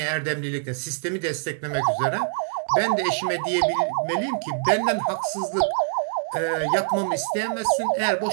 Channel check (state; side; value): silent; left; 62 dB below the other